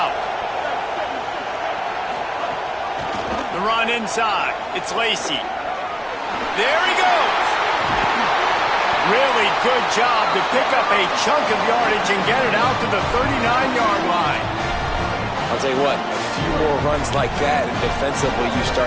The run inside. It's Lacy. There he goes. Really good job to pick up a chunk of yardage and get it out to the 39-yard line. I'll tell you what, a few more runs like that, and defensively you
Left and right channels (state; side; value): identical; both; correlation 1.00